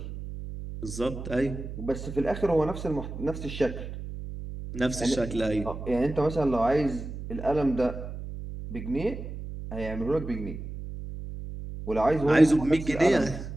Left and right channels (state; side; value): noise; right; hum, 9 dB below the sound